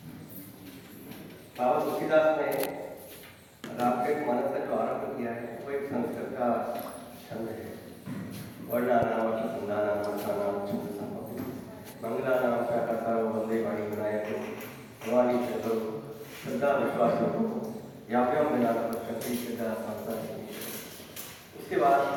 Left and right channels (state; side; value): identical; both; correlation 1.00